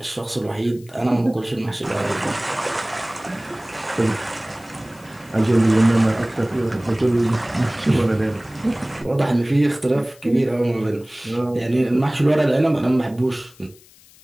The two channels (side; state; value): left; noise; hiss, 26 dB below the sound